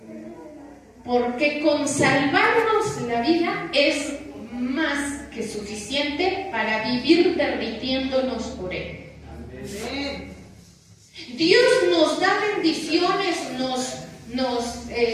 Porque con salvarnos la vida es más que suficiente para vivir derritiéndonos por Él. Dios nos da bendiciones,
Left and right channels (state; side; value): identical; both; correlation 1.00